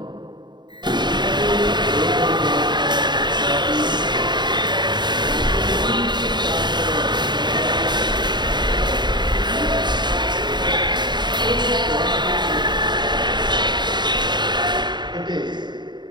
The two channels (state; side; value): late; left; 0.21 ms